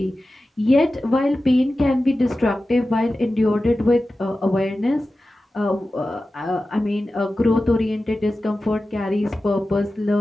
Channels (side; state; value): both; normal; correlation 0.94